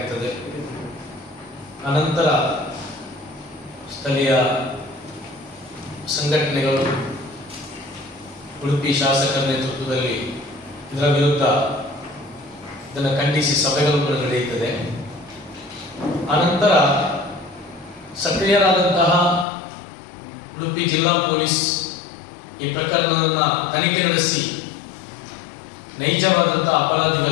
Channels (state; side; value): drops out; right; at 19.5 s